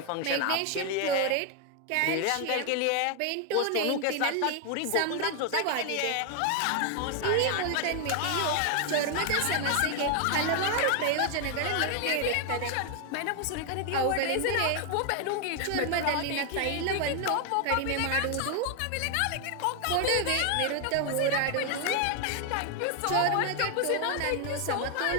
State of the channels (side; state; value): both; different; correlation 0.00